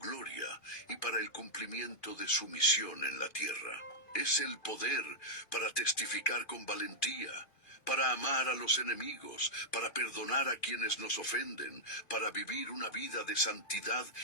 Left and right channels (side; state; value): right; late; 2.5 ms